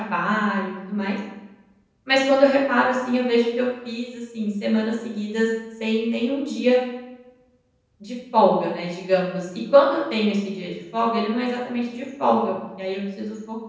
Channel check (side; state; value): both; identical; correlation 1.00